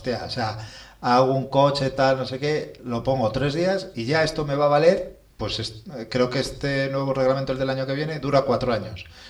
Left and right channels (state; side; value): identical; both; correlation 1.00